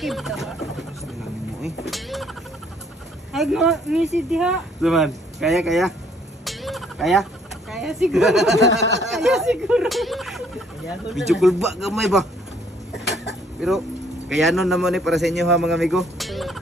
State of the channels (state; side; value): normal; both; correlation 0.64